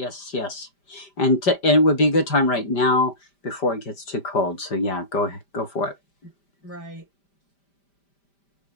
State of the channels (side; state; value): right; late; 5.1 ms